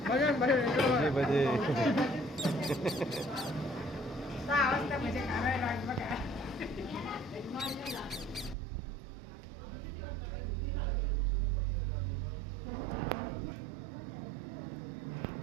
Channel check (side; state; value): left; drops out; at 8.6 s